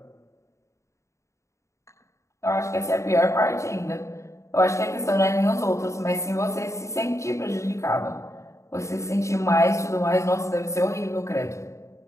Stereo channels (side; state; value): right; late; 0.14 ms